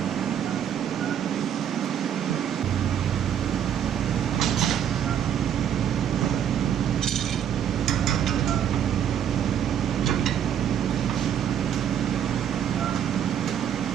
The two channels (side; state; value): left; quieter; 9.4 dB